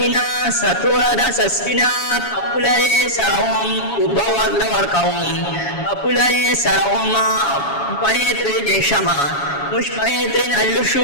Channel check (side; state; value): right; late; 7.2 ms